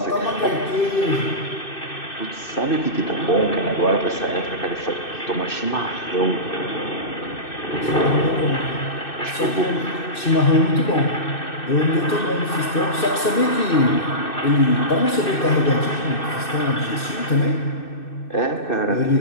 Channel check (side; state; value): right; late; 2.6 ms